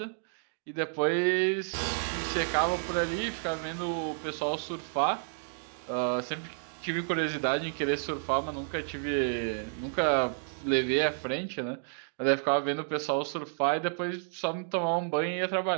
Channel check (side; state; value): left; silent; digital silence